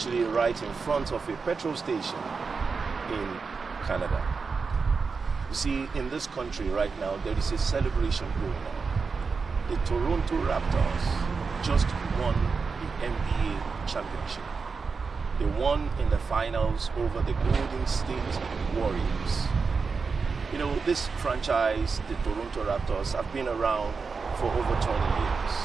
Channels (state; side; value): quieter; left; 4.9 dB